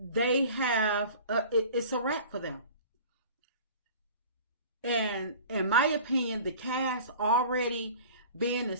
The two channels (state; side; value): inverted; both; correlation -0.43